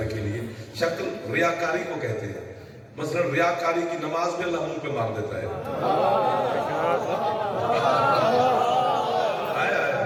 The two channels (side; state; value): both; identical; correlation 1.00